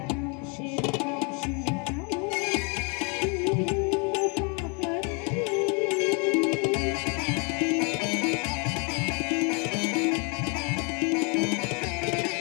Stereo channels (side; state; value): right; quieter; 34.5 dB